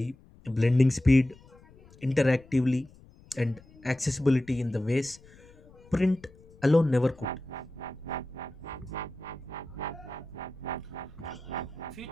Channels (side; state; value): left; noise; rumble, 25 dB below the sound